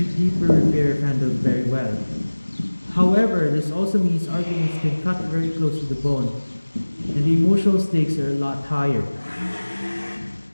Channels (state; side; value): inverted; both; correlation -1.00